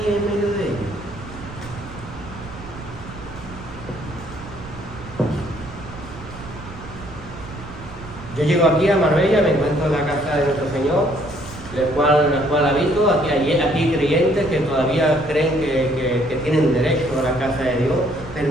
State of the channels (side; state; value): right; noise; rumble, 14 dB below the sound